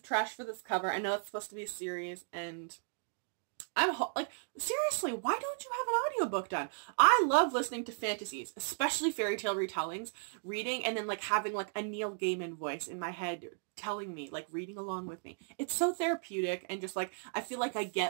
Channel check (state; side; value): silent; left; digital silence